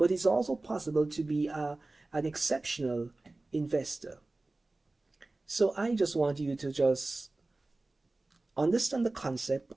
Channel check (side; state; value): left; quieter; 3.1 dB